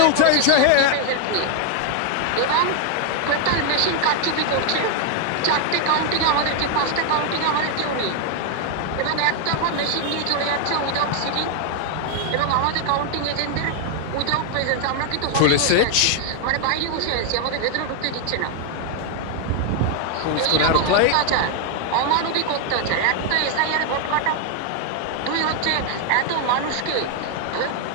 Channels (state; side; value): different; both; correlation 0.00